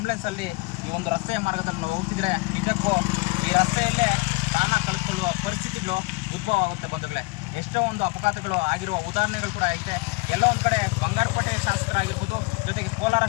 ಈ ಒಂದು ರಸ್ತೆಯ ಮಾರ್ಗದಲ್ಲಿ ನಾವು ಹೋಗ್ತಿದ್ರೆ ನಿಜಕ್ಕೂ ಈ ರಸ್ತೆಯಲ್ಲೇ ಪ್ರಾಣ ಕಳೆದುಕೊಳ್ಳುವ ಪರಿಸ್ಥಿತಿಗಳು ಉದ್ಭವ ಆಗುತ್ತೆ ಬಂಧುಗಳೇ. ಎಷ್ಟೋ ಒಂದು ಅಪಘಾತಗಳು ಆಗಿರುವ ಉದಾಹರಣೆಗಳು ಕೂಡ ಐತೆ. ಎಲ್ಲ ಒಂದು ಕಡೆ ಬಂಗಾರಪೇಟೆ ಶಾಸಕರಾಗಿರ್ಬೋದು, ಜೊತೆಗೆ ಕೋಲಾರ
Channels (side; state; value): right; quieter; 26.5 dB